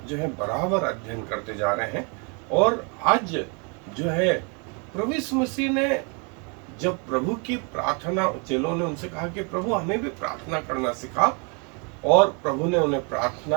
जो है बराबर अध्ययन करते जा रहे हैं। और आज जो है प्रभु यीशु मसीह ने जब प्रभु की प्रार्थना, चेलों ने उनसे कहा कि प्रभु हमें भी प्रार्थना करना सिखा, और प्रभु ने उन्हें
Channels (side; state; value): left; quieter; 34.9 dB